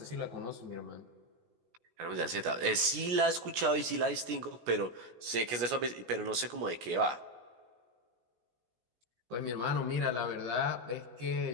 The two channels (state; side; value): late; left; 17 ms